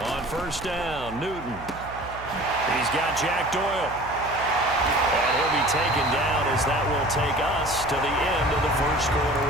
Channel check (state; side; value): noise; right; hum, 15 dB below the sound